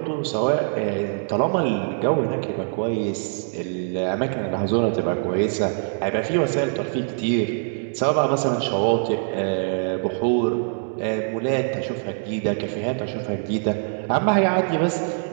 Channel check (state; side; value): silent; left; 63 dB below the other